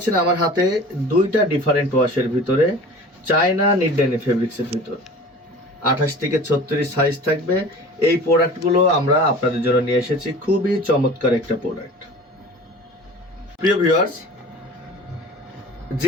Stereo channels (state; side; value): normal; both; correlation 0.41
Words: আমার হাতে দুইটা ডিফারেন্ট ওয়াশের ভিতরে চায়না নিট ডেনিম ফেব্রিক্সের ভিতর 28 থেকে 36 সাইজ থাকবে। এই প্রোডাক্টগুলো আমরা আপনাদের জন্য নিয়ে এসেছি, খুবই চমৎকার একটা প্রোডাক্ট। প্রিয় ভিউয়ার্স,